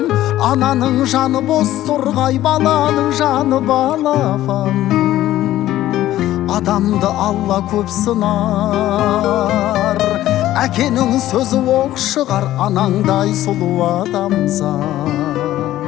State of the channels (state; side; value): quieter; right; 14.1 dB